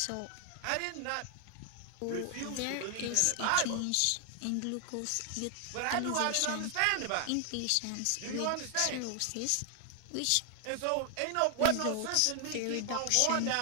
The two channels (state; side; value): different; both; correlation 0.00